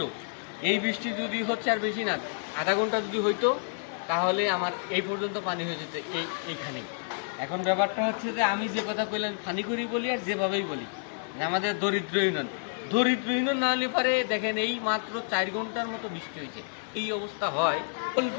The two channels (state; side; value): silent; right; 58 dB below the other